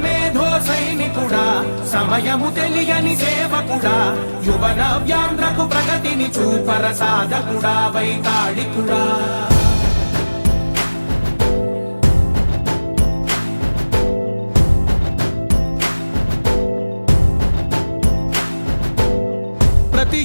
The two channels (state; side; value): inverted; both; correlation -1.00